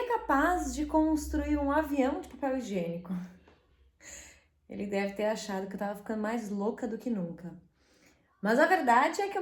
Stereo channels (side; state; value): both; identical; correlation 1.00